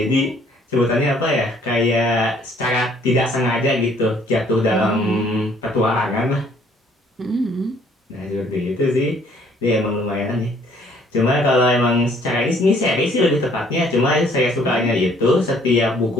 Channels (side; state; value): both; normal; correlation 0.61